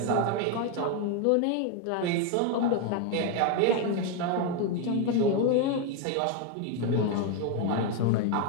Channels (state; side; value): different; both; correlation 0.01